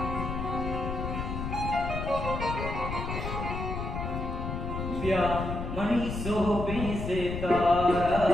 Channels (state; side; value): noise; left; rumble, 4 dB below the sound